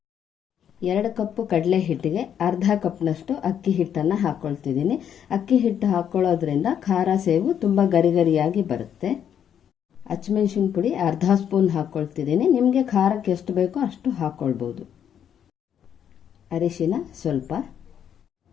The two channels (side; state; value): right; quieter; 9.0 dB